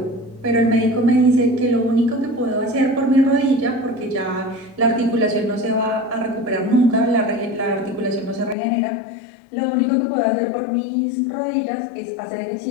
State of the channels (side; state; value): right; drops out; at 8.6 s